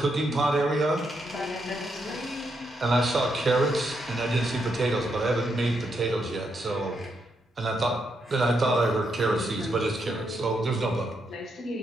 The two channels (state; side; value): normal; both; correlation 0.80